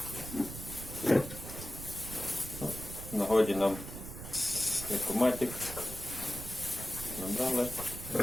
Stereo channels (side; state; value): right; noise; rumble, 10 dB below the sound